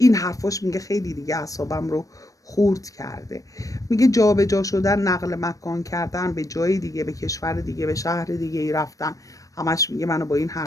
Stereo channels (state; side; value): late; right; 0.16 ms